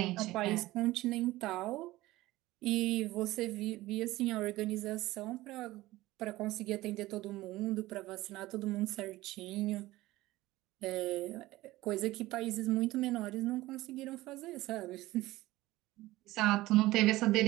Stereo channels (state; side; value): quieter; left; 17.8 dB